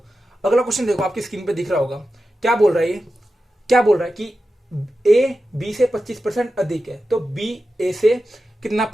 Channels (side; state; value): both; normal; correlation 0.92